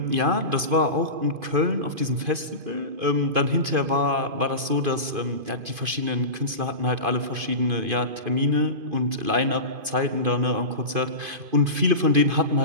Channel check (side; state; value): left; late; 2.5 ms